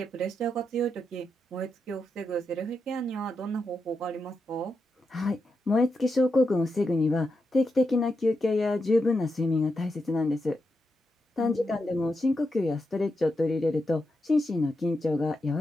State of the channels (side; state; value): both; normal; correlation 0.86